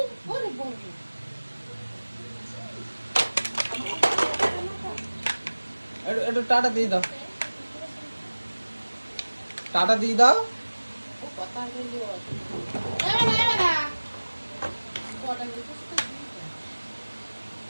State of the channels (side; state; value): both; inverted; correlation -1.00